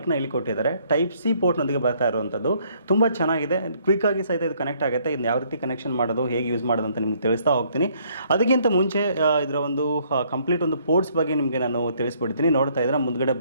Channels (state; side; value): inverted; both; correlation -0.66